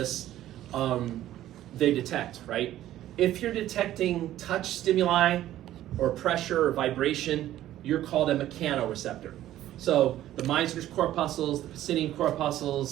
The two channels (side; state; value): left; quieter; 13.3 dB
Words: they detect, right? If you're detecting touch stimuli or pressure or vibration, you're called a mechanoreceptor. So the Meissner's corpuscles, the Pacinian